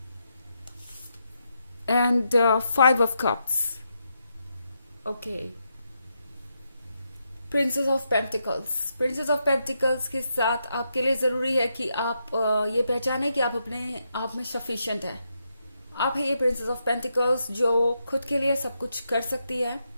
and 5 of Cups. Okay. Princess of pentacles. Princess of pentacles के साथ आपके लिए जरूरी है कि आप ये पहचाने कि आप अपने आप में सफिशिएंट है। आप है ये प्रिंसेस ऑफ पेंटिकल्स जो खुद के लिए सब कुछ कर सकती है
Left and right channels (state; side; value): inverted; both; correlation -0.82